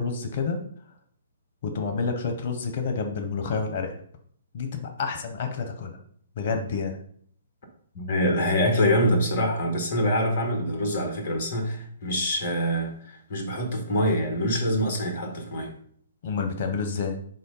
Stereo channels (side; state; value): both; inverted; correlation -0.50